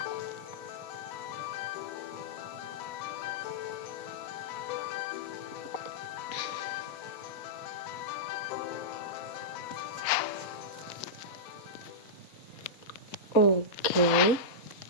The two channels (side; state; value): right; late; 4.2 ms